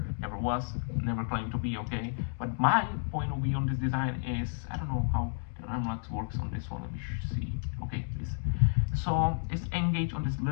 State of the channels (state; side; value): silent; right; digital silence